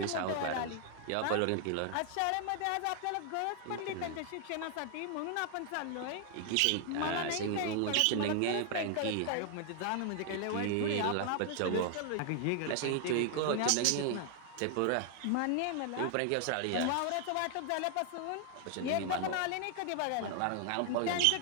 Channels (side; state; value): both; different; correlation 0.00